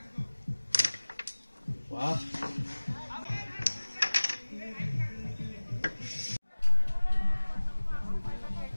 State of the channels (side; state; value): both; inverted; correlation -1.00